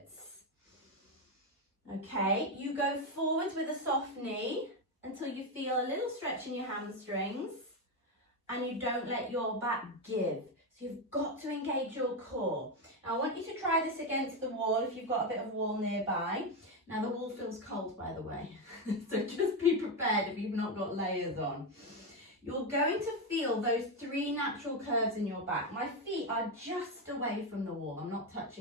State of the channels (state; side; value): normal; both; correlation 0.09